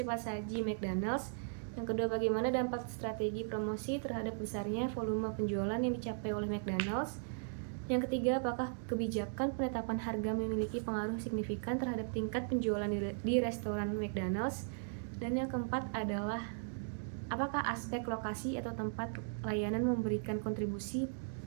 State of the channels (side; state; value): left; silent; digital silence